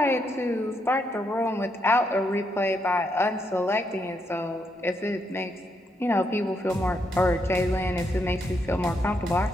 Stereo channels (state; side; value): normal; both; correlation 0.78